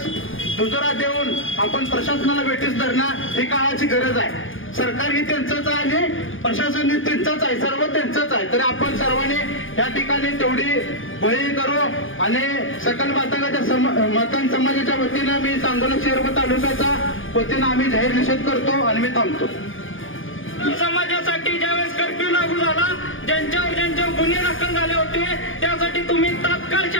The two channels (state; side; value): late; right; 0.58 ms